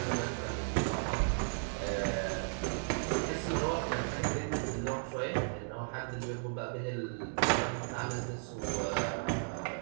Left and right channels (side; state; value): left; silent; 54 dB below the other